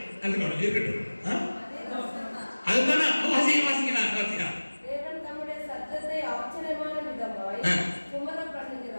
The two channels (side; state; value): both; inverted; correlation -1.00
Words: அதுக்கு இருக்கட்டும். அதுதானே வாசிக்கலாம். தேவன் தம்முடைய சத்தத்தை ஆச்சரியமான விதமாய் சுமரப்